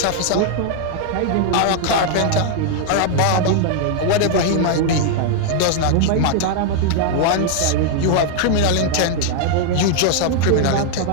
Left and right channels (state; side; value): different; both; correlation 0.00